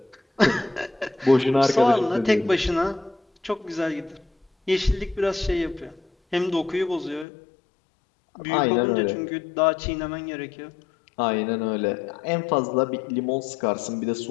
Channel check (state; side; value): drops out; right; at 7.2 s